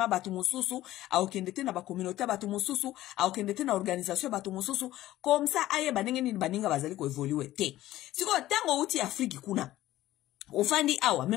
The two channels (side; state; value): right; quieter; 15.0 dB